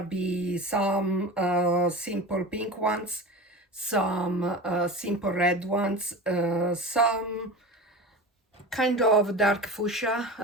be some simple pink ones, some simple red ones, some kind of dark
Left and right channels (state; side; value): normal; both; correlation 0.31